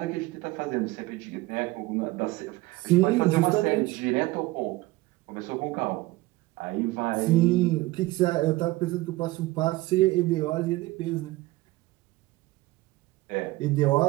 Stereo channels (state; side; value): quieter; left; 19.4 dB